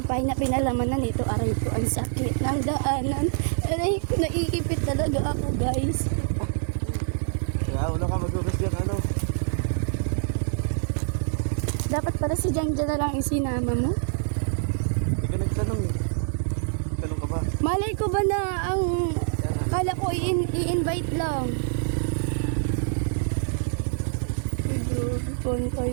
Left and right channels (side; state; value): left; silent; digital silence